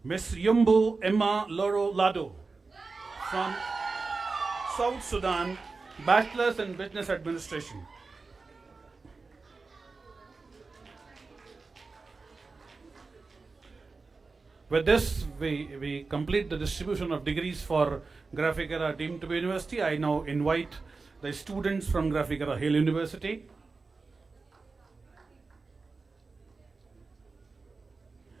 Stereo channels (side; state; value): left; quieter; 4.1 dB